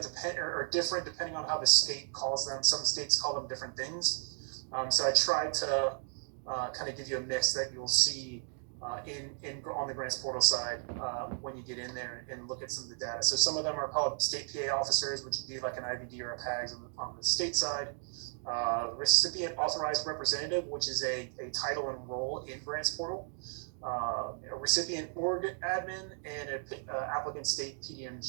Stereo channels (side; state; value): left; silent; 55 dB below the other